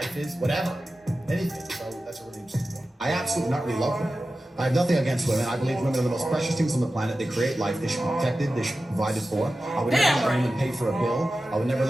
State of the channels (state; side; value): normal; both; correlation 0.94